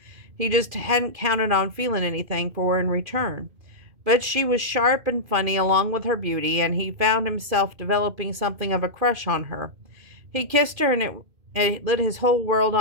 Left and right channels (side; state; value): left; late; 2.4 ms